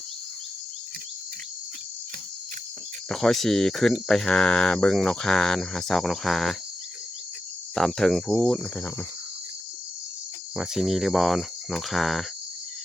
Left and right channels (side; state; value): both; normal; correlation 0.88